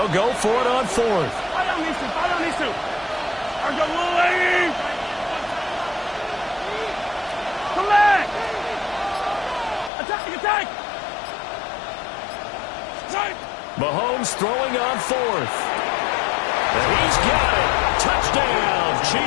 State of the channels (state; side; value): drops out; right; at 9.9 s